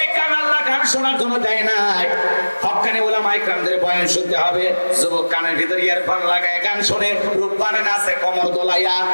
কান আল্লাহ গান শোনার জন্য দেয় নাই। হক্কানি উলামায়ে কেরামদের বয়ান শুনতে হবে। যুবক কানের ভিতর ইয়ারফোন লাগায় গান শুনে, রূপবানে নাচে কমর দোলাইয়া,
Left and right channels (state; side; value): inverted; both; correlation -1.00